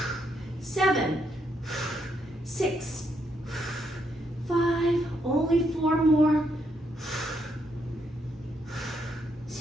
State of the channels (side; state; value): both; normal; correlation 0.77